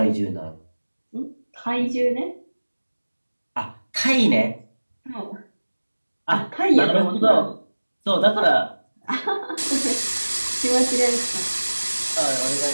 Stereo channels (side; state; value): both; inverted; correlation -1.00